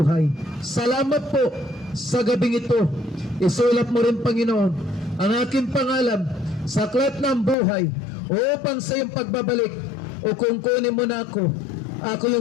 Salamat po sa gabing ito. Isulat mo rin, Panginoon, ang aking pangalan sa aklat ng buhay upang sa iyong pagbabalik o kung kunin mo na ako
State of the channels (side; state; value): right; drops out; at 7.6 s